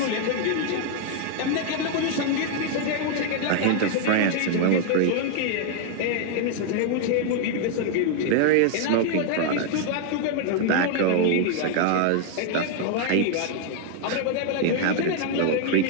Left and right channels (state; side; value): different; both; correlation 0.00